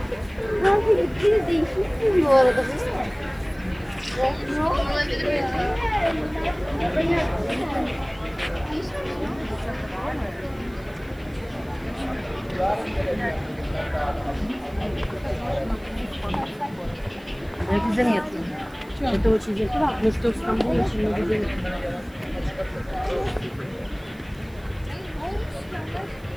Kanka gittiniz değişmişsiniz bu arada. Herkese mi yatıyor? Evde o çizecek. Mesut İstanbul yaşında gidiyor.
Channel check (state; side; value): noise; right; hiss, 27 dB below the sound